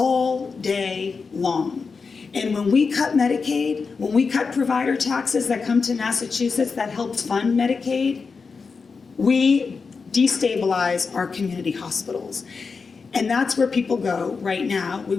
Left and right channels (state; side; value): quieter; right; 4.9 dB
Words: day long. And when we cut Medicaid, when we cut provider taxes that come to Massachusetts that helps fund Medicaid, we destabilize our community hospitals. And that's where people go right now. We